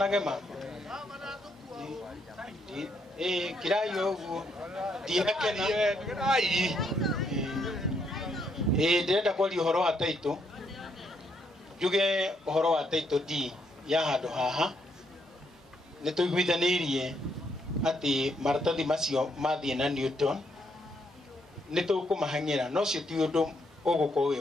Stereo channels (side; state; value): both; normal; correlation 0.74